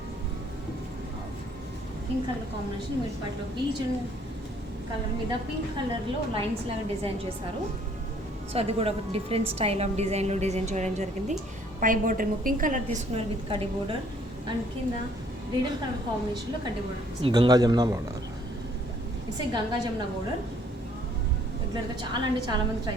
Pink color combination. Mid పార్ట్లో beach colour మీద పింక్ కలర్లో లైన్స్ లాగా డిజైన్ చేశారు. సో అది కూడా ఒక డిఫరెంట్ స్టైల్ ఆఫ్ డిజైన్లో డిజైన్ చేయడం జరిగింది. పై బోర్డర్ ఏమో పింక్ కలర్ తీసుకున్నారు విత్ కడ్డీ బోర్డర్. అండ్ కింద రీడల్ కలర్ కాంబినేషన్లో కడ్డీ బోర్డర్. Ganga Jamuna border. It's a Ganga Jamuna బోర్డర్. రెగ్యులర్గా చాలా అంటే చాలా మంది ట్రై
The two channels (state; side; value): normal; both; correlation 0.61